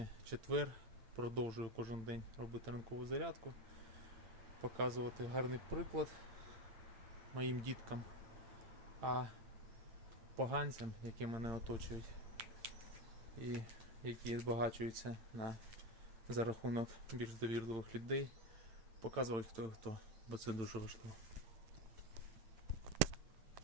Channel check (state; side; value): late; left; 8.9 ms